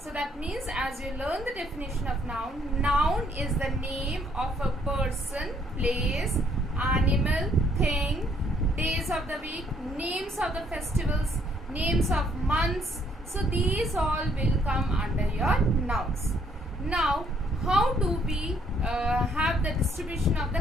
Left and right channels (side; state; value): both; normal; correlation 0.67